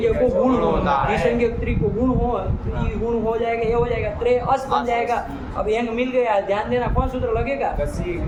को गुण हो, घी संज्ञा त्रि को गुण हो, गुण हो जाएगा, ये हो जाएगा त्रे अस बन जाएगा। अब एंग मिल गया, ध्यान देना कौन सूत्र लगेगा?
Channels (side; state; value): both; identical; correlation 1.00